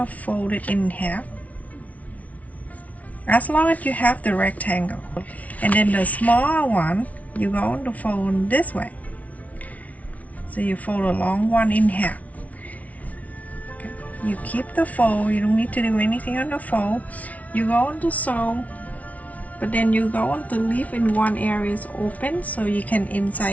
fold it in half as long as you have the rectangle, and then the small one you're going to fold this way. So you fold a long one in half. Okay. You keep the fold, you don't need to do anything on the fold. You're going to sew, but then you're going to leave in one area open so you can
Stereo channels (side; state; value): right; late; 0.069 ms